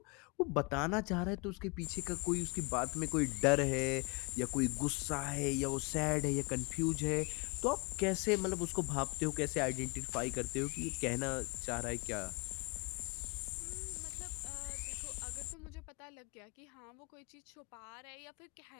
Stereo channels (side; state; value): right; quieter; 29.8 dB